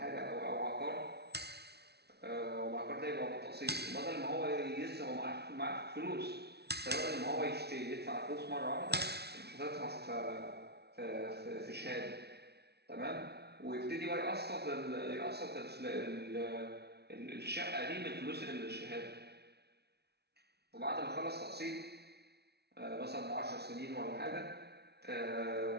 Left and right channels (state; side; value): late; left; 0.48 ms